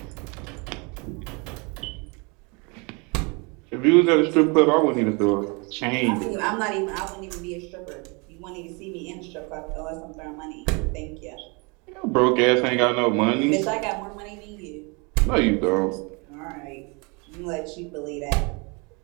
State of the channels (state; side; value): quieter; left; 30.6 dB